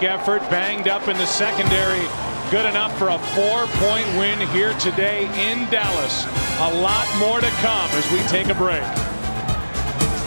effort, banged up in the secondary. Good enough for a 4-point win here today in Dallas. A lot more to come as we take a break.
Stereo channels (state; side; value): inverted; both; correlation -1.00